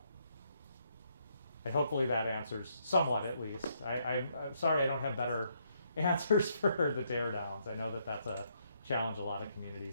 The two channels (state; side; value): inverted; both; correlation -0.74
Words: And hopefully that answers somewhat, at least. I'm sorry I don't have better answers for the tear downs. I know that that's a challenge a lot of